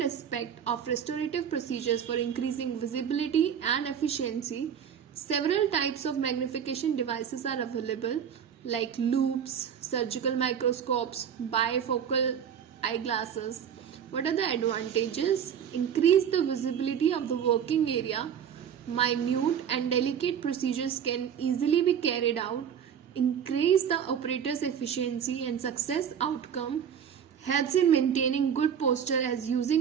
aspect of restorative procedures for increasing visibility and efficiency. Several types of magnification devices are available like loupes, surgical microscopes, bifocal eyeglasses. What are the advantages? Increase the visibility of the working area. Minute and delicate procedures can easily be carried out. Increase the operator's efficiency and success outcome. Helps in maintaining good posture as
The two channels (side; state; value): left; quieter; 8.3 dB